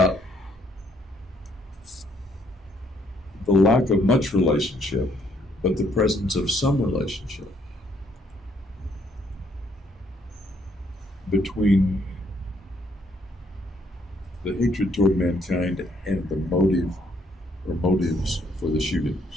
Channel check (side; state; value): both; normal; correlation 0.69